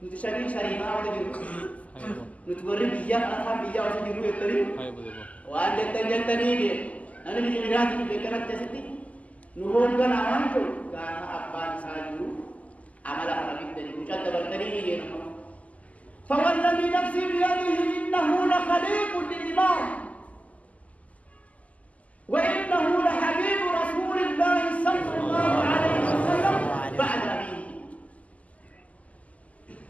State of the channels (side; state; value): right; late; 0.071 ms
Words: syarifah ada jiru. Nutu goreng biya atau biya ada jiru itu ni. Wah jantan ni dia. Nanti di miras itu berkerat jadi. Nuhon kan aman tu. Karena apa sahaja amalan orang itu ucap terbertani dia. فوالذي نفسي بيده إنه لخليق للإمام وإنه لحبيب رسول الله صلى الله عليه وسلم بعد أبيه